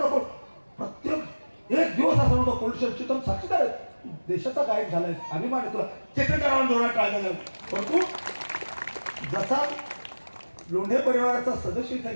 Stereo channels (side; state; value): both; inverted; correlation -1.00